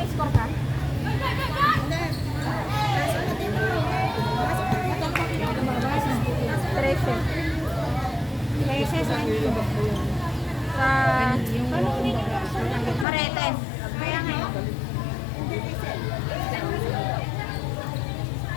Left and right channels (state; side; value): drops out; right; at 13.1 s